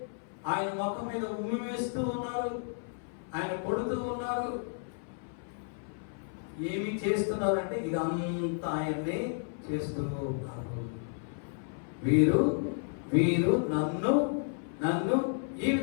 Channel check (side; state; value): right; silent; 56 dB below the other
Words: ఆయన ముఖం మీద ఉమ్మి వేస్తూ ఉన్నారు, ఆయన కొడుతూ ఉన్నారు. ఏమి చేస్తున్నారంటే ఇదంతా ఆయన్ని చేస్తూ ఉన్నారు. వీరు నన్ను ఈ